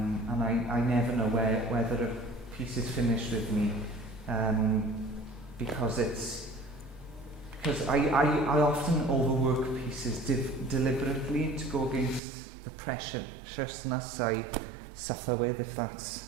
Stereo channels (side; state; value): left; drops out; at 12.2 s